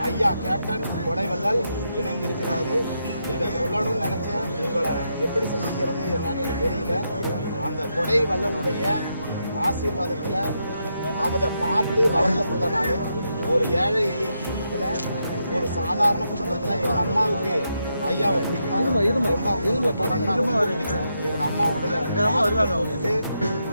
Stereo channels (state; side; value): inverted; both; correlation -0.82